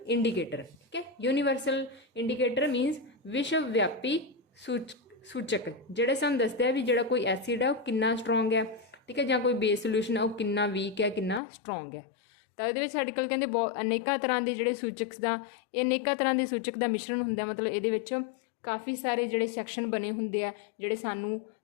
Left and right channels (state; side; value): drops out; right; at 11.4 s